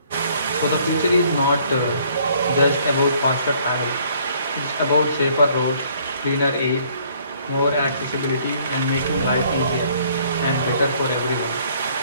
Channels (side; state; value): both; inverted; correlation -0.61